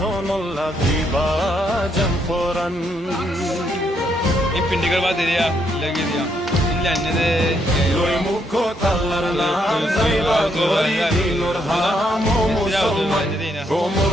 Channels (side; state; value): both; normal; correlation 0.75